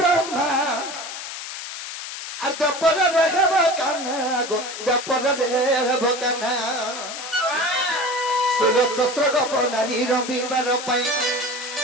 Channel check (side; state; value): left; noise; hiss, 9 dB below the sound